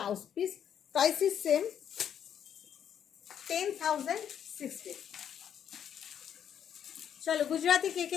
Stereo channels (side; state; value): right; quieter; 9.0 dB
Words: piece. Price is same, 10,060। চলো, গুজরাটি কে কে